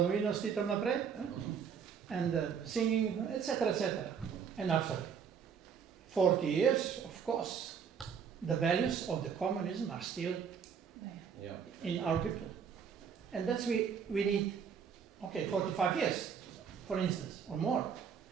stitom naprej, and singing, etc., etc. And after 40 years, of course, the values of the communism are still in our people. And that's we need, 45 years. for instance, or more,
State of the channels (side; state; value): left; quieter; 7.1 dB